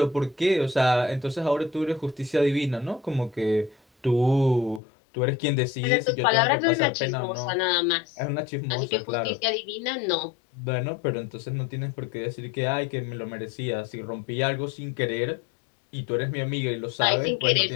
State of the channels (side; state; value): right; drops out; at 4.8 s